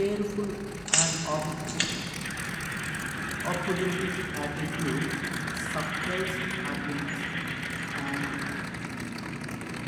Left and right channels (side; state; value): both; identical; correlation 1.00